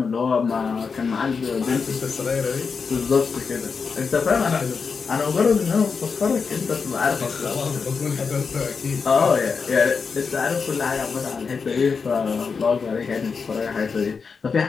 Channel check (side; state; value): right; quieter; 5.3 dB